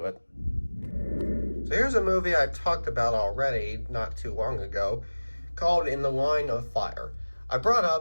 it. So here's a movie I talked about already not too long ago called In the Line of Fire. I brought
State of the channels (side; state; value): both; inverted; correlation -1.00